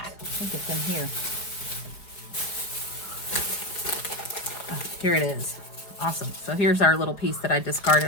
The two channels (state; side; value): late; right; 4.9 ms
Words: think it's in here. Oh, here it is. Awesome. So here's our little piece that I